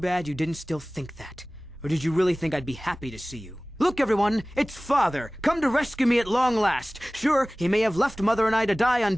you didn't still think that. Or did you really think I'd be happy to see you? Look, everyone, it's Father, come to rescue me at long last. Sure, he may have left Mother and I to die on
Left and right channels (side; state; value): both; normal; correlation 0.98